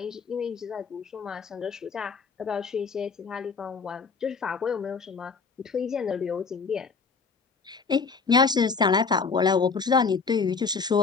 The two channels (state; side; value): quieter; right; 5.0 dB